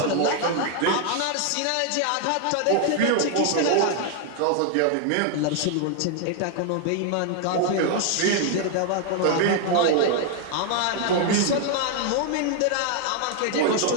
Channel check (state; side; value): different; both; correlation 0.00